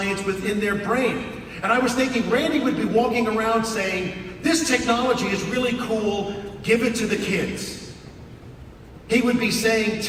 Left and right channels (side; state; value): both; identical; correlation 1.00